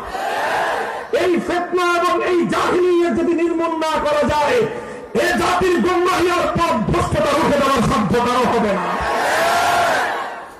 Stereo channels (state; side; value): identical; both; correlation 1.00